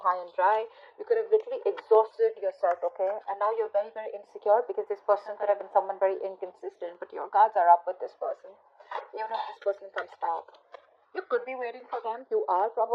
high and dry. You could have literally exhausted yourself, okay? And now you're very, very insecure, because this person could have been someone very inconsistent, but your guards are up with this person. Even if this person comes back, you could be waiting for them. You are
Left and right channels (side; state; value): both; identical; correlation 1.00